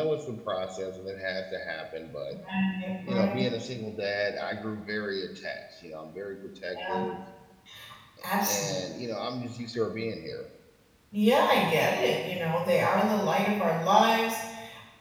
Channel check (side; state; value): both; identical; correlation 1.00